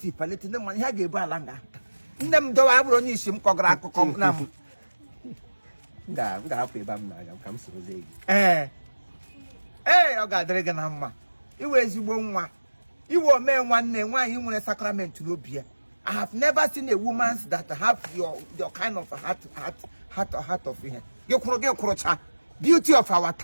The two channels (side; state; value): both; inverted; correlation -1.00